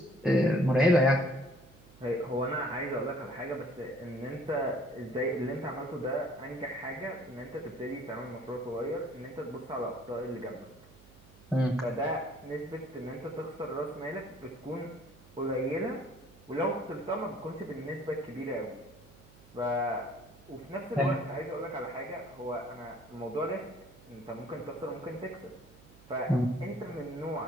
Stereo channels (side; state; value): right; noise; hum, 23 dB below the sound